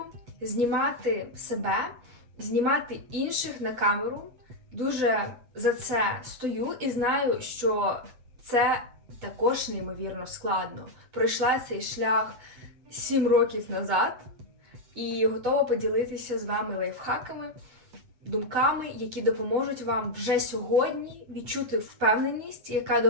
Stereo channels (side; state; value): left; late; 8.3 ms